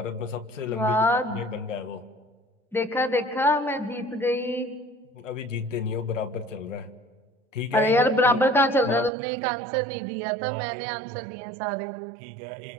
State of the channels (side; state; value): left; drops out; at 9.1 s